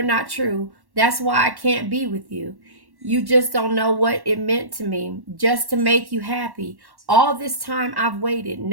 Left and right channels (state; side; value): late; left; 1.1 ms